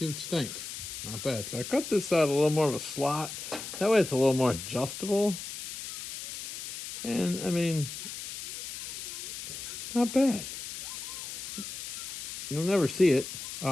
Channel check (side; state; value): left; noise; hiss, 8 dB below the sound